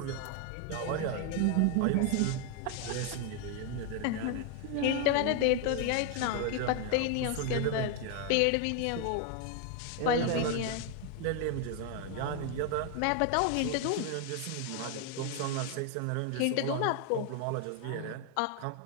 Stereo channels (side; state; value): both; different; correlation 0.01